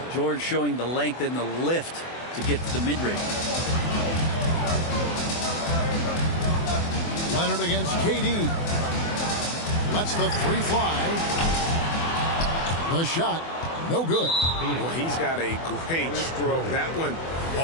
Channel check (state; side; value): late; right; 24 ms